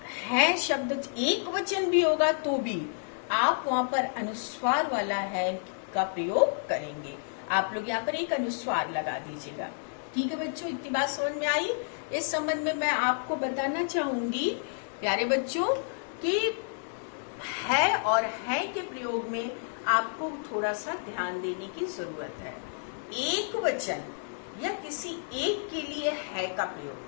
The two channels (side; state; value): right; silent; digital silence